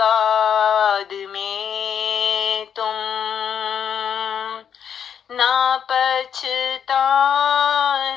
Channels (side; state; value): right; quieter; 8.1 dB